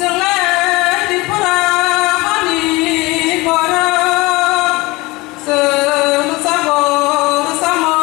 dipura hani bara selu sabor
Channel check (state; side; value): quieter; right; 22.4 dB